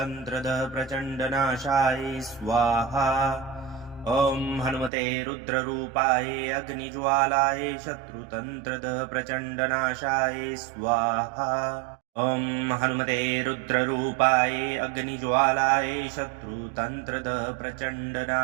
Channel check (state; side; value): drops out; left; at 4.9 s